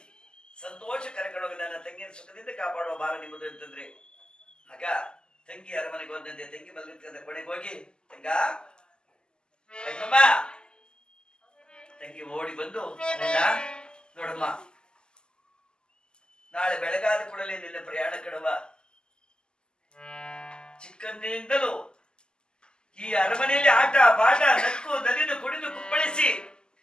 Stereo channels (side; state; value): right; late; 0.047 ms